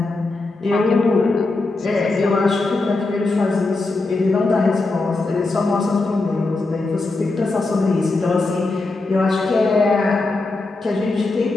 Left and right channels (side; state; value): right; quieter; 3.3 dB